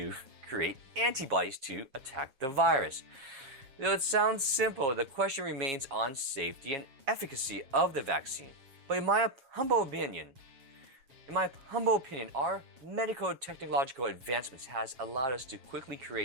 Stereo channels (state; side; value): late; left; 7.4 ms